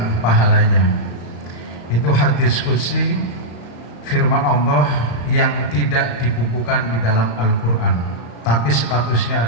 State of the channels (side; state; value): right; late; 34 ms